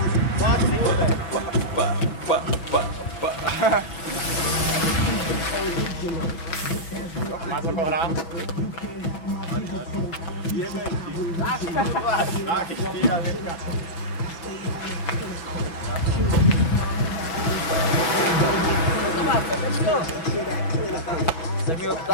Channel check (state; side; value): late; right; 6.1 ms